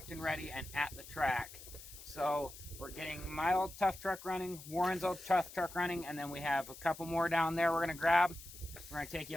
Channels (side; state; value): left; noise; hiss, 15 dB below the sound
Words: and ready and at the track. So we're getting my old tough truck running, Warren's old tough truck running, and then we have a couple more down there we're gonna grab. We're gonna take